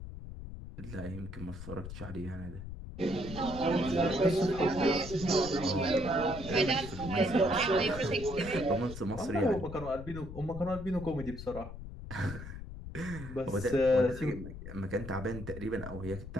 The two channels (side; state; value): left; noise; rumble, 10 dB below the sound